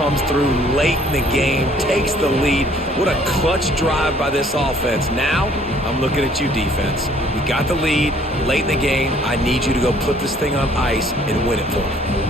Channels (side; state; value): both; normal; correlation 0.59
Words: through late in the game, takes the lead. What a clutch drive by this offense. Now, I'm looking at you, defense. We got the lead late in the game. I need you to go put this thing on ice and win it for me.